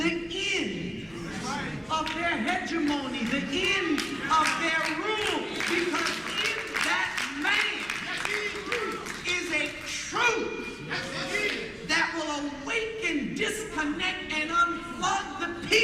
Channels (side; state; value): both; identical; correlation 1.00